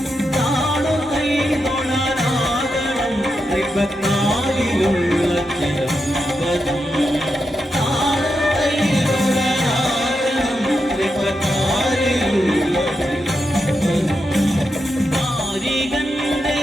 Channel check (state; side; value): normal; both; correlation 0.86